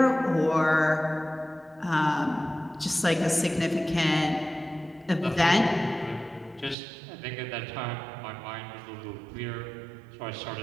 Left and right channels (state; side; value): drops out; left; at 6.8 s